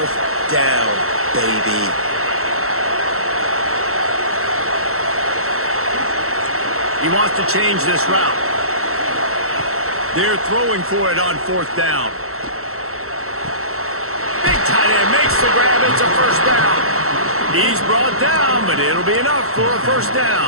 down, baby. He wants to change this route. They're throwing for it on 4th down. Big tight end makes the grab. It's a first down. He's brought down, but it'll be enough for a first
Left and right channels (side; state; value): left; late; 0.63 ms